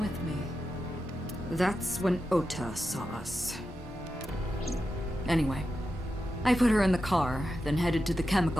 me. That's when Ota saw us. Anyway, I put her in the car, then headed to the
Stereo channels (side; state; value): both; normal; correlation 0.90